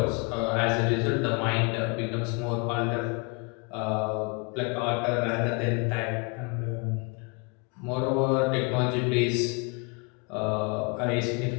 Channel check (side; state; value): right; quieter; 32.0 dB